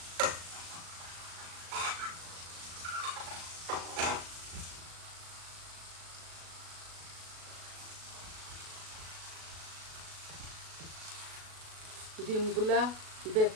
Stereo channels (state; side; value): late; left; 37 ms